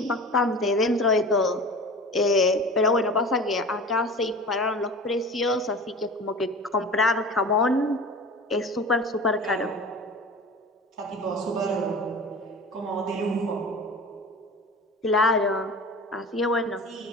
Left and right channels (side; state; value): both; normal; correlation 0.36